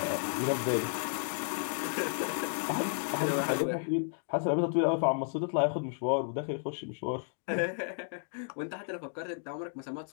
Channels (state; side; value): silent; right; digital silence